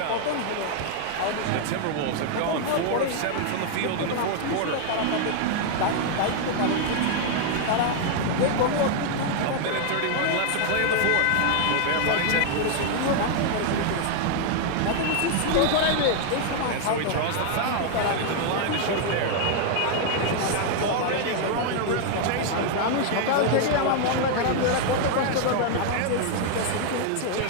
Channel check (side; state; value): both; different; correlation 0.00